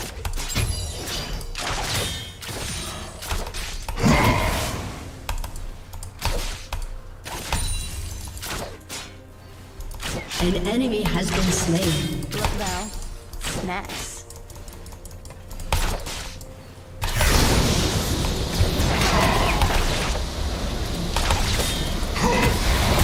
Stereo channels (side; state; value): both; identical; correlation 1.00